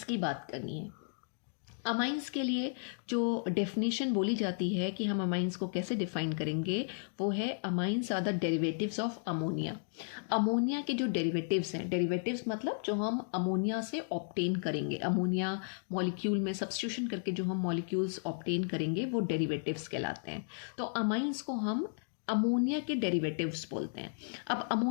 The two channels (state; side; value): silent; right; digital silence